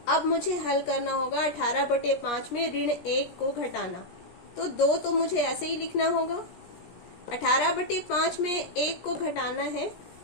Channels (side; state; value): right; late; 17 ms